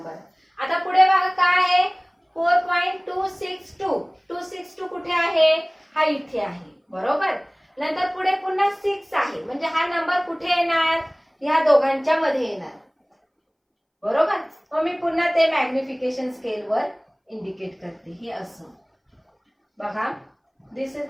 आता पुढे बघा काय आहे? 4.262. 262 कुठे आहे? हा इथे आहे बरोबर. नंतर पुढे पुन्हा 6 आहे. म्हणजे हा नंबर कुठे येणार? ह्या दोघांच्या मध्ये येणार बरोबर. मग मी पुन्हा ते मॅग्निफिकेशन स्केल वर इंडिकेट करते. हे असं बघा. This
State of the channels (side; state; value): both; identical; correlation 1.00